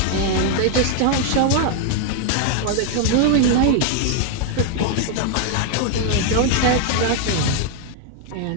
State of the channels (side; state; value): both; different; correlation 0.00